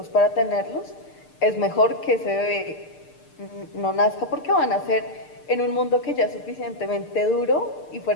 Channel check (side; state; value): right; late; 6.7 ms